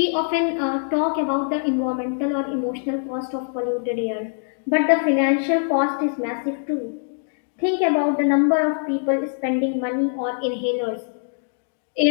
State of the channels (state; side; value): silent; right; digital silence